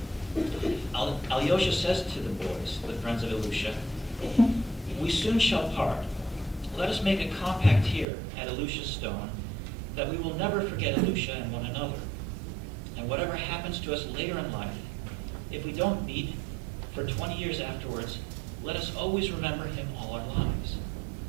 Alyosha says to the boys, the friends of Ilusha, "We soon shall part. Let us make a compact here at Ilusha's stone that we will never forget Ilusha and one another. And whatever happens to us later in life, if we don't meet for 20 years afterwards, let us always remember him all our lives.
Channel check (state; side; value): drops out; left; at 8.1 s